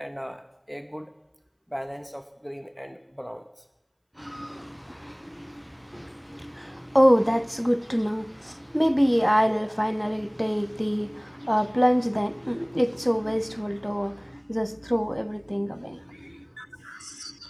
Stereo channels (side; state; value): both; identical; correlation 1.00